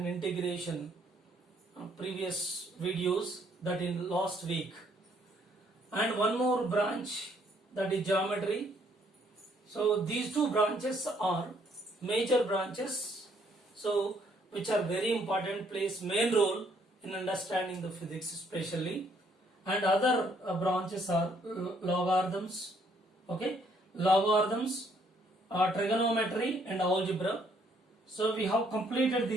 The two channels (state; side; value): normal; both; correlation 0.67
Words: integration previous videos, that in last week, and one more branch, that is geometry. So these two branches are major branches, so which are very important, plays main role in understanding the physics especially. And other branches are logarithms, okay, logarithms, trigonometry and algebra. So we have completed